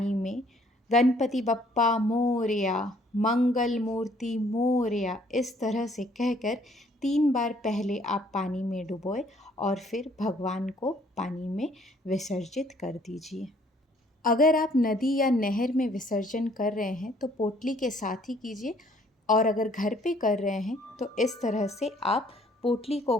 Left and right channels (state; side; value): normal; both; correlation 0.62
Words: में गणपति बप्पा मोरया, मंगल मूर्ति मोरया, इस तरह से कहकर 3 बार पहले आप पानी में डुबोए और फिर भगवान को पानी में विसर्जित कर दीजिए। अगर आप नदी या नहर में विसर्जन कर रहे हैं तो पोटली के साथ ही कीजिए और अगर घर पे कर रहे हैं तो इस तरह से आप पोटली को